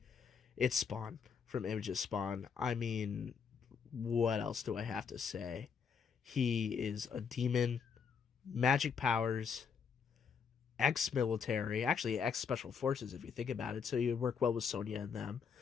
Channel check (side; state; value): right; quieter; 6.3 dB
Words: it's Spawn from Image's Spawn. I mean, what else do I have to say? He is a demon, magic powers, ex-military, actually ex-special forces if you think about it, so you'd work well with Sonya and them.